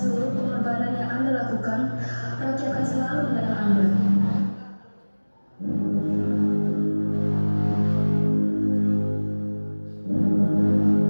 pengorbanan yang Anda lakukan, rakyat akan selalu mengenang Anda.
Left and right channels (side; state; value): both; inverted; correlation -1.00